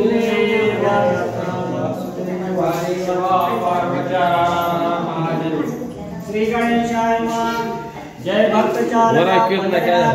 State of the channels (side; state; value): both; identical; correlation 1.00